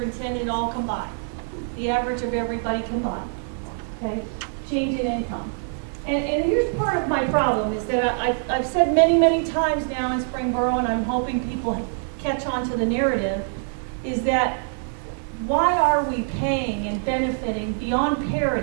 all combined. The average of everybody combined. Okay? Change in income. And here's part of my problem is that I've said many, many times now in Springboro, and I'm hoping people catch on to the narrative, is that why are we paying and benefiting beyond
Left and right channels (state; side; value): silent; left; digital silence